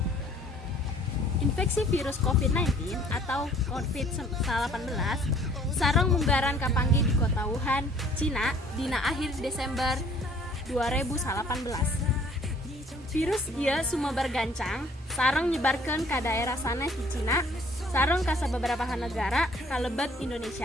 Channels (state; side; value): normal; both; correlation 0.57